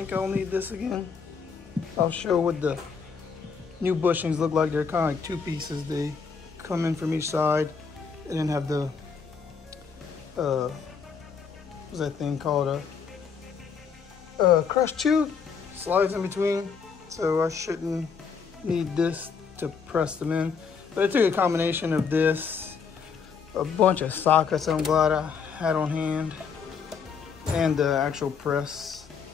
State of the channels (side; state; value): right; quieter; 5.9 dB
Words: I'll need this again. I'll show what the new bushings look like. They're kind of like two pieces. They come in from each side and then have the, what's that thing called? A crush tube slides in between. So I shouldn't need this to press them in. But I took a combination of this, a bunch of sockets I'm glad I had on hand, and the actual press.